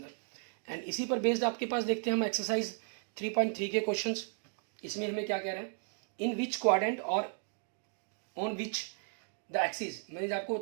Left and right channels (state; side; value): silent; left; 55 dB below the other